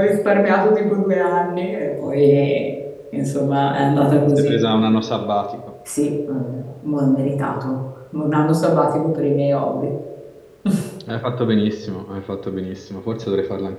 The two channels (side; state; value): both; identical; correlation 1.00